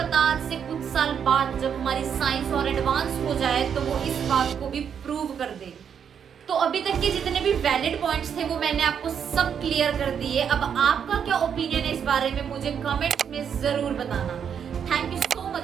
आज से कुछ साल बाद जब हमारी साइंस और एडवांस हो जाए तो वो इस बात को भी प्रूव कर दे। तो अभी तक के जितने भी वैलिड पॉइंट्स थे वो मैंने आपको सब क्लियर कर दिए। अब आपका क्या ओपिनियन है इस बारे में, मुझे कमेंट्स में जरूर बताना। Thank you so much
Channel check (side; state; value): left; quieter; 7.8 dB